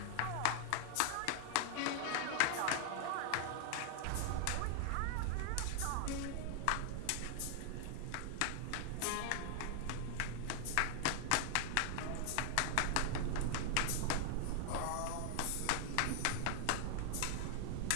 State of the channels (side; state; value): both; different; correlation 0.00